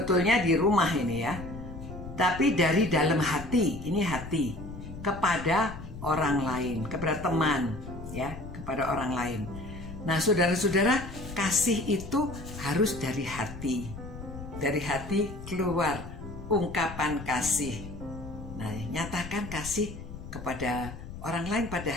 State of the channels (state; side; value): noise; left; rumble, 11 dB below the sound